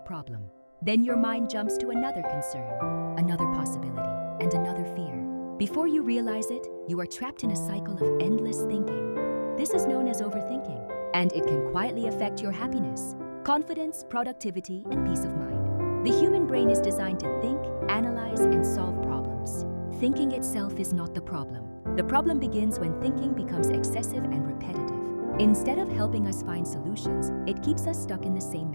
Then your mind jumps to another concern, another possibility, and another fear. Before you realize it, you are trapped in a cycle of endless thinking. This is known as overthinking, and it can quietly affect your happiness, confidence, productivity, and peace of mind. The human brain is designed to think, analyze, and solve problems. Thinking itself is not the problem. The problem begins when thinking becomes excessive and repetitive. Instead of helping us find solutions, it keeps us stuck in the same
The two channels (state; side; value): inverted; both; correlation -1.00